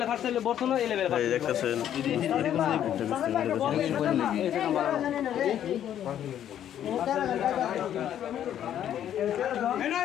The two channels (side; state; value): right; quieter; 10.5 dB